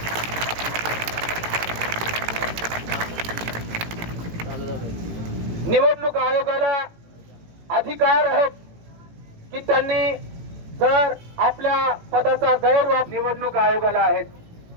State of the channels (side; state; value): left; late; 18 ms